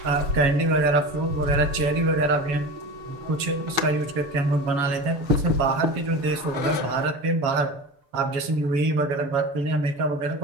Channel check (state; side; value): late; left; 7.2 ms